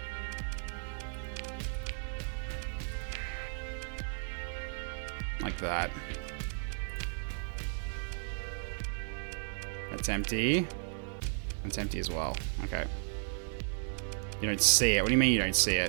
Like that. That's empty. That's empty as well. Okay. You don't see it. What do you mean you don't see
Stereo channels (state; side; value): silent; left; digital silence